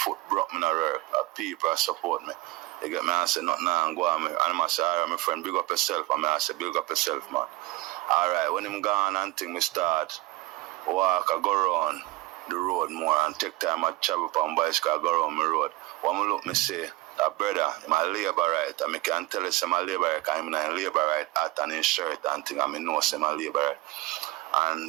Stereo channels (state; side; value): quieter; left; 20.0 dB